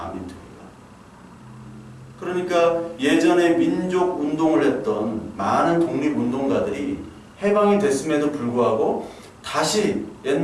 그러니까 예전에 민족 운동을 했던 많은 독립운동가들이 해방이 됐음에도 불구하고 다시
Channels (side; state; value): both; identical; correlation 1.00